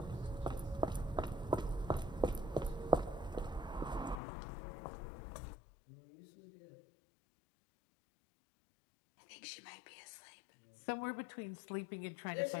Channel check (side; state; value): right; drops out; at 4.2 s